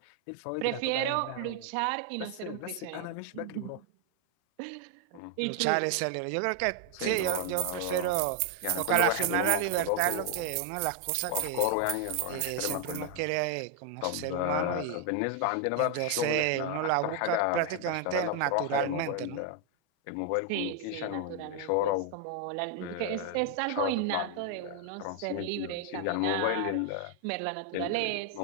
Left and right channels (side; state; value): both; different; correlation 0.00